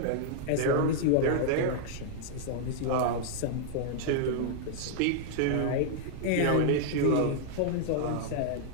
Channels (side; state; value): both; different; correlation -0.01